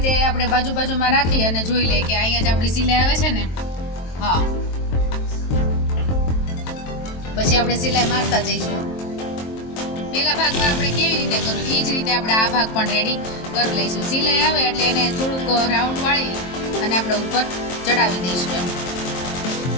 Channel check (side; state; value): right; late; 23 ms